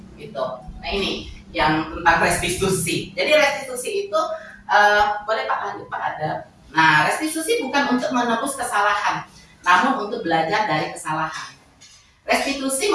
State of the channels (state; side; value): identical; both; correlation 1.00